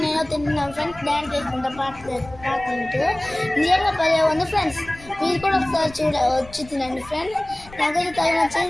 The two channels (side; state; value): left; noise; rumble, 20 dB below the sound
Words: నేను తింటున్నాం ఫ్రెండ్స్. డ్యాన్స్ వేసుకుంటా పాడుకుంటూ. నిజంగా భలే ఉంది ఫ్రెండ్స్. మీరు కూడా ఒకసారి వచ్చి తినండి ఫ్రెండ్స్. నాకైతే తగిన